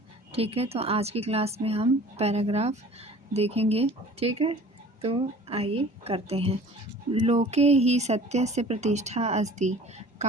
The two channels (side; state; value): both; normal; correlation 0.46